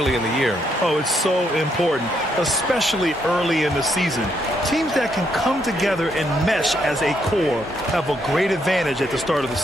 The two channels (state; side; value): normal; both; correlation 0.75